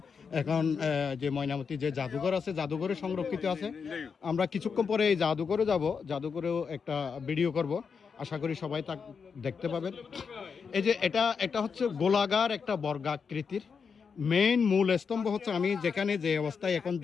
এখন যে ময়নামতি যে জাদুঘর আছে, জাদুঘরে সংরক্ষিত আছে। আমরা কিছুক্ষণ পরে এই জাদুঘরে যাব, জাদুঘরেও একটা ভিডিও করব। আশা করি সবাই তা দেখতে পাবেন। এই যে এটা হচ্ছে গোলাকার একটা বর্গাকৃতির মেইন মূল স্তম্ভ হচ্ছে, আমি যেখানে যে অবস্থায় এখন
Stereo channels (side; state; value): right; quieter; 5.9 dB